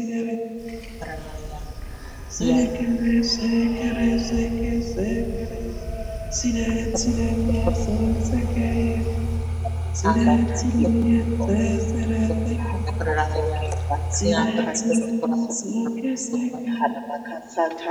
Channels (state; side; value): identical; both; correlation 1.00